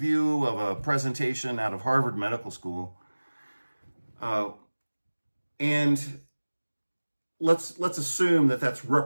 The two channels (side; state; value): both; inverted; correlation -1.00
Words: of a presentation out of Harvard Medical School. And let's assume that that's